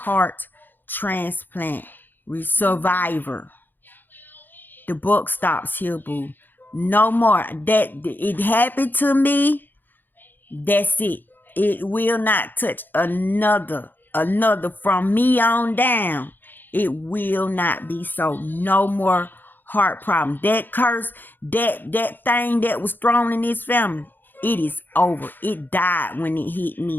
transplant survivor. The book stops here, boo. No more. That it happened to me. That's it. It will not touch another from me on down. It will not be so. No more heart problem. That curse, that thing that was thrown in this family, it is over. It died when it hit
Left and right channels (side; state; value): right; late; 0.091 ms